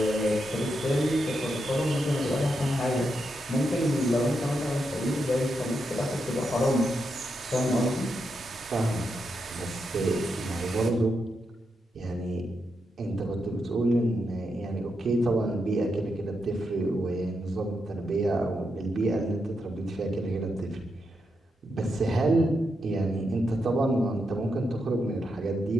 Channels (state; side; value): normal; both; correlation 0.84